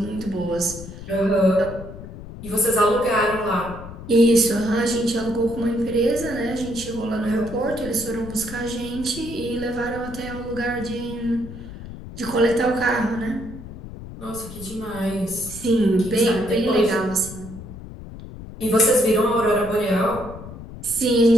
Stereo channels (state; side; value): noise; left; rumble, 13 dB below the sound